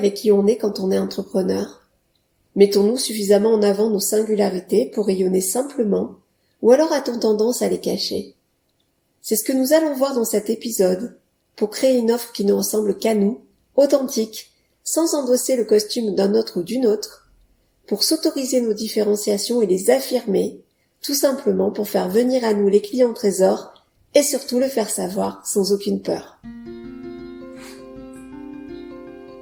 qui on est quand on est entrepreneur? Mettons-nous suffisamment en avant nos singularités pour rayonner simplement, ou alors a-t-on tendance à les cacher? C'est ce que nous allons voir dans cet épisode, pour créer une offre qui ne ressemble qu'à nous, authentique, sans endosser le costume d'un autre ou d'une autre, pour s'autoriser nos différenciations et les affirmer, tout simplement pour faire venir à nous les clients trésors et surtout le faire savoir sans aucune peur.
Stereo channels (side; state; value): both; identical; correlation 1.00